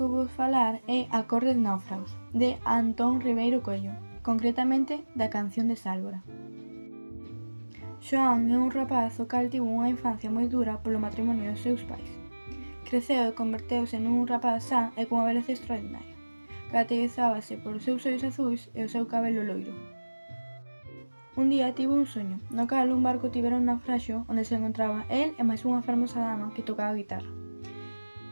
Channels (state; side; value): inverted; both; correlation -1.00